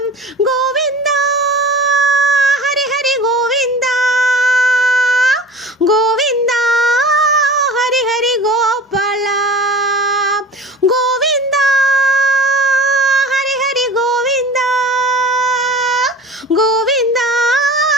கோவிந்தா ஹரி ஹரி கோவிந்தா கோவிந்தா ஹரி ஹரி கோபாலா கோவிந்தா ஹரி ஹரி கோவிந்தா கோவிந்தா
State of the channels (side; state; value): both; normal; correlation 0.39